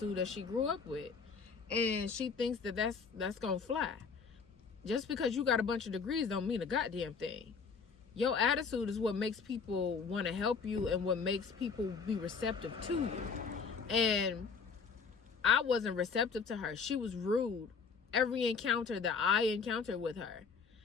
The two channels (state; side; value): quieter; right; 5.5 dB